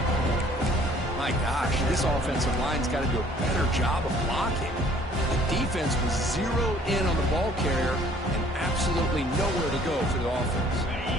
My gosh, this offensive line's got to do a better job of blocking. The defense was zeroed in on the ball carrier and absolutely nowhere to go for the offense.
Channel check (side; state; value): both; normal; correlation 0.57